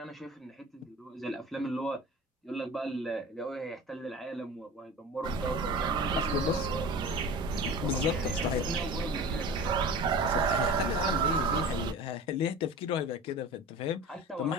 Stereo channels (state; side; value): normal; both; correlation 0.37